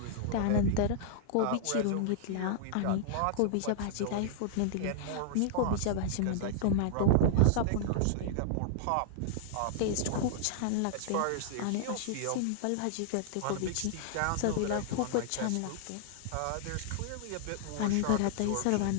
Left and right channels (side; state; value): both; different; correlation -0.01